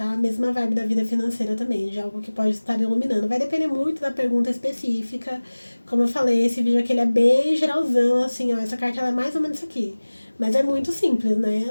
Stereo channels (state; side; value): inverted; both; correlation -1.00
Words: A mesma vibe da vida financeira também, de algo que pode estar iluminando. Vai depender muito da pergunta específica. Como eu falei, esse vídeo aqui ele é bem geralzão, assim, ó, essa carta ela é mais ou menos isso aqui. Mas é muito simples, né?